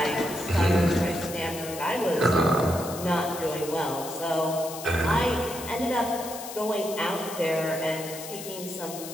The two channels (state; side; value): noise; left; hiss, 11 dB below the sound